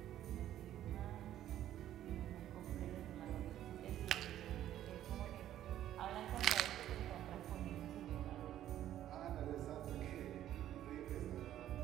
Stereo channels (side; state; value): left; quieter; 12.1 dB